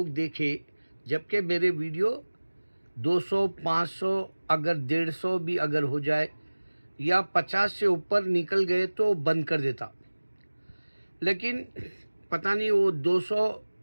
देखे, जबकि मेरे वीडियो 200, 500 अगर 150 भी अगर हो जाए या 50 से ऊपर निकल गए तो बंद कर देता। लेकिन पता नहीं वो 200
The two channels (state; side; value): inverted; both; correlation -1.00